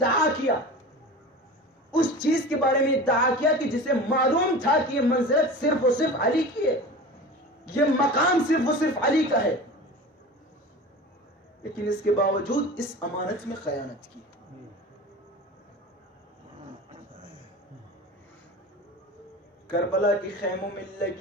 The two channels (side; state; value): both; normal; correlation 0.34